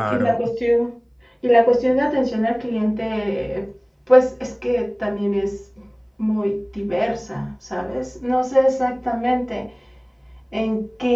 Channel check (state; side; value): identical; both; correlation 1.00